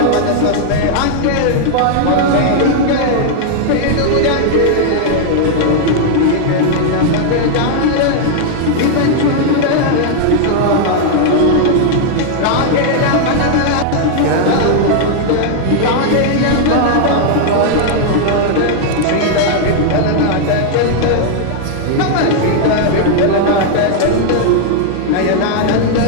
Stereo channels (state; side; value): different; both; correlation -0.01